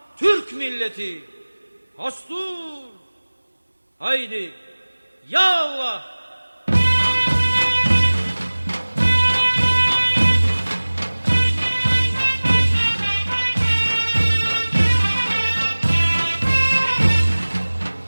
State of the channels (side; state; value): both; inverted; correlation -1.00